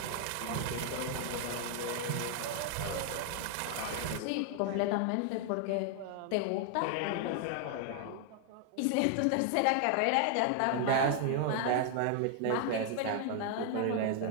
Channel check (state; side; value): different; both; correlation 0.00